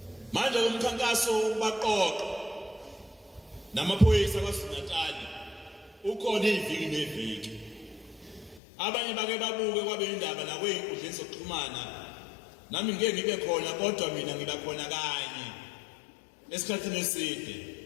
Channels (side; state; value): right; drops out; at 8.6 s